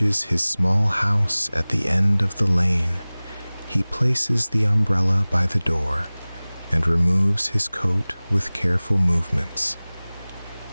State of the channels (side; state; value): both; inverted; correlation -0.99